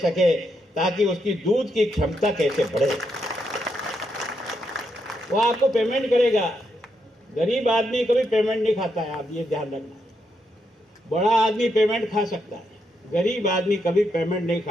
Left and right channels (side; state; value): both; normal; correlation 0.80